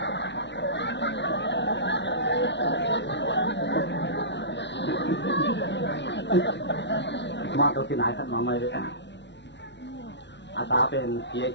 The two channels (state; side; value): late; right; 0.51 ms